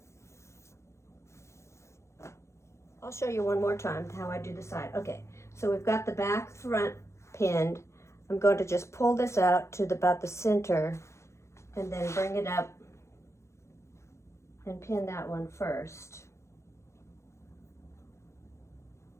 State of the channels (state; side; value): late; right; 0.13 ms